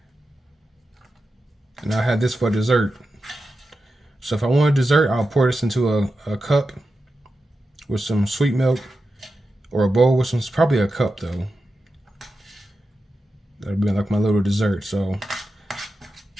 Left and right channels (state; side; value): normal; both; correlation 0.90